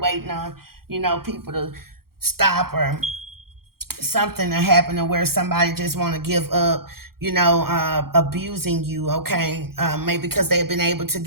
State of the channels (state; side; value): late; left; 0.94 ms